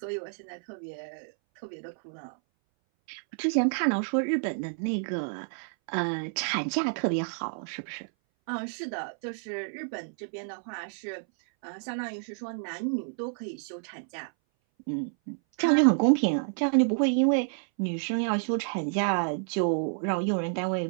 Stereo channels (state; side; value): silent; left; 58 dB below the other